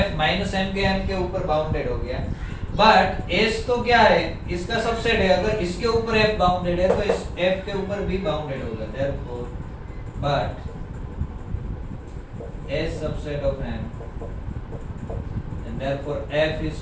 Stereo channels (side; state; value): both; identical; correlation 1.00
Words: माइनस m के ऊपर बाउंडेड हो गया. बट s तो क्या है, इसका सबसेट है. अगर इसके ऊपर f बाउंडेड है तो इस f के ऊपर भी बाउंडेड होगा. therefore but s subset of m and therefore f is